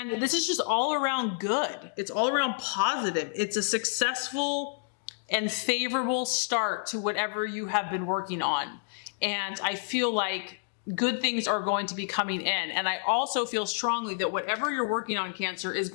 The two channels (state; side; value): silent; right; digital silence